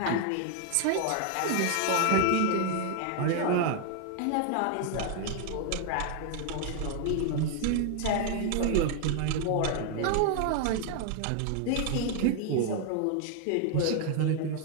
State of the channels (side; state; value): both; different; correlation 0.00